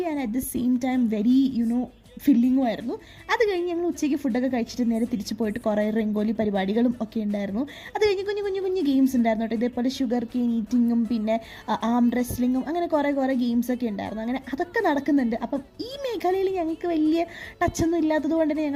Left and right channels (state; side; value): identical; both; correlation 1.00